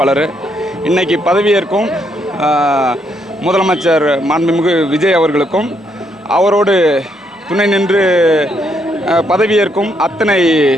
இன்றைக்கி பதவியேற்கும் முதலமைச்சர் மாண்புமிகு விஜய் அவர்களுக்கும் அவரோடு துணை நின்று பதவியேற்கும் அத்தனை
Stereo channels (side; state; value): both; normal; correlation 0.74